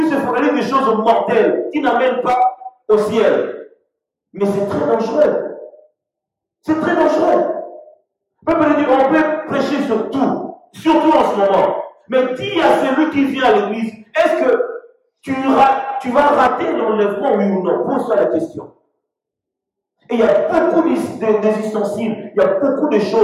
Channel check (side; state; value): both; identical; correlation 1.00